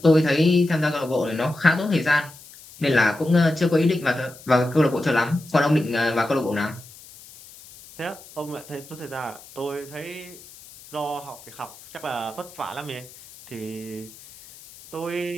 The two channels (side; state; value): left; noise; hiss, 20 dB below the sound